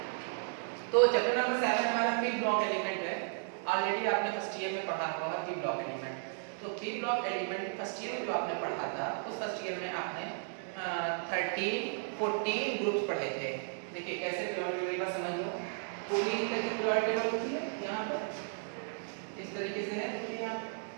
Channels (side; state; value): left; silent; 55 dB below the other